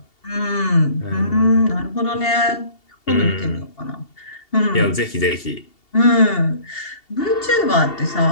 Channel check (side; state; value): right; late; 2.7 ms